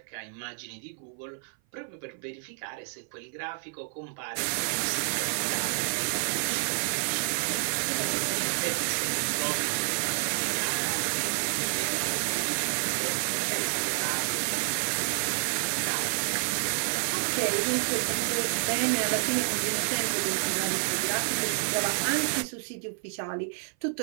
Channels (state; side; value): silent; left; 56 dB below the other